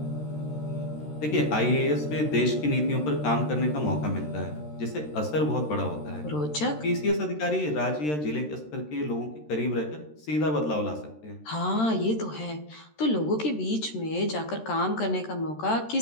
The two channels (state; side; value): late; right; 13 ms